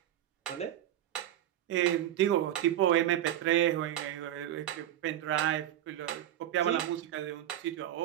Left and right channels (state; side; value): quieter; left; 12.0 dB